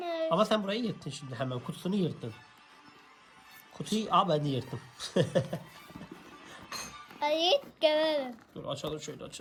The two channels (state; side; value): identical; both; correlation 1.00